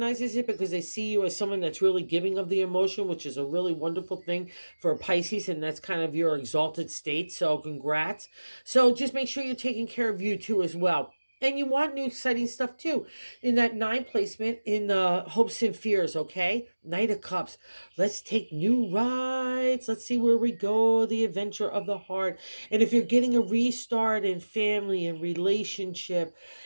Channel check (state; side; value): inverted; both; correlation -1.00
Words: it, because they see you as someone that's really giving of the emotion, which is a really wonderful thing for a Pisces, and that's kind of your exalted state. So congrats. So just make sure you're taking care of you too as well. And you want new exciting stuff too. In that nine placement in the hopes and fears, okay? Knight of Cups. Let's take new rides. Let's see where we go. The adventure of the heart. And if you're getting a restart in family and relationship